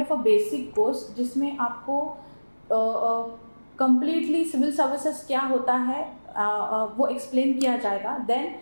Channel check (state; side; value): inverted; both; correlation -1.00